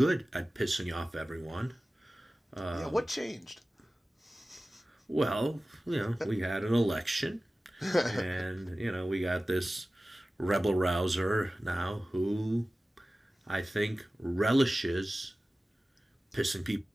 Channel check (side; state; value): both; normal; correlation 0.96